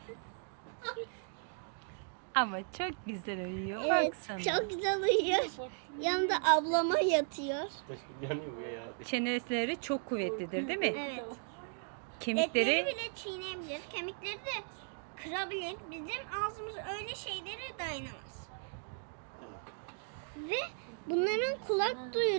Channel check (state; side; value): silent; left; 54 dB below the other